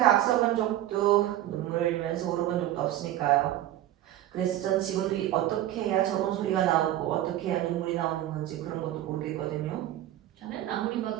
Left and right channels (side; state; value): left; quieter; 13.5 dB